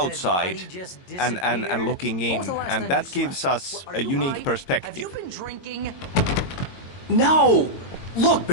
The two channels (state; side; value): late; right; 22 ms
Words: and looking in, and that gives us a unique perspective. No! Look,